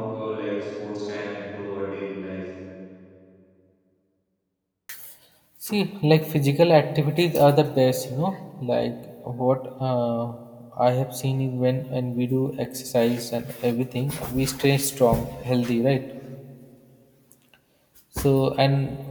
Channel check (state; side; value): identical; both; correlation 1.00